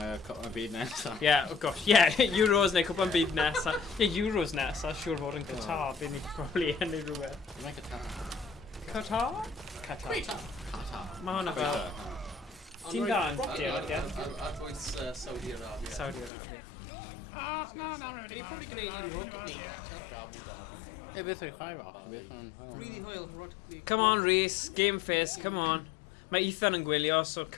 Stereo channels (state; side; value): drops out; right; at 16.3 s